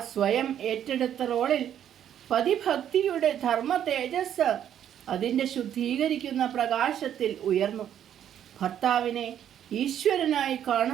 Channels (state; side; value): quieter; left; 10.0 dB